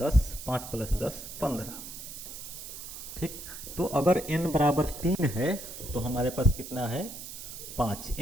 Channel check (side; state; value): right; noise; hiss, 10 dB below the sound